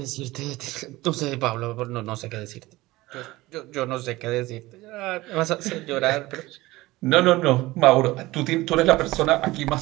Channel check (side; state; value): left; quieter; 19.2 dB